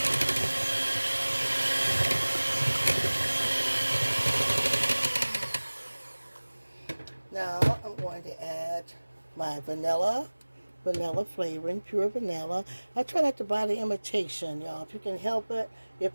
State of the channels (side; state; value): both; inverted; correlation -1.00